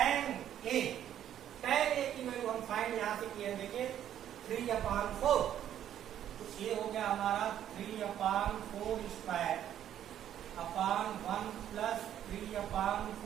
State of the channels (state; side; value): quieter; left; 10.7 dB